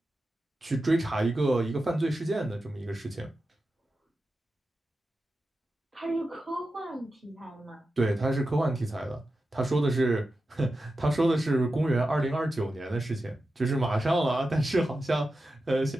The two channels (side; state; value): both; normal; correlation 0.91